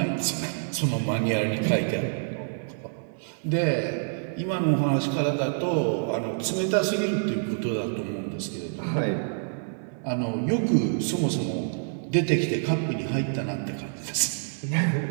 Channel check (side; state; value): left; silent; 59 dB below the other